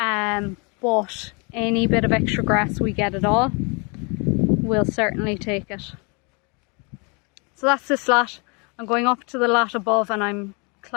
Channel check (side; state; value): right; quieter; 32.4 dB